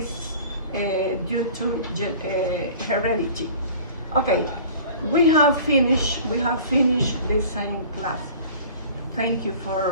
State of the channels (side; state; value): both; inverted; correlation -0.44